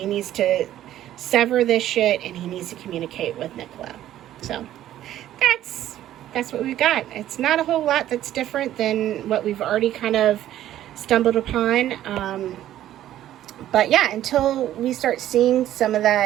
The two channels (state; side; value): quieter; left; 12.7 dB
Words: needs to sever this shit, and he needs to communicate with Nicola. So that's what we've got. It's not a whole lot that's different than what we've already kind of stumbled upon. But yeah, until we start seeing some of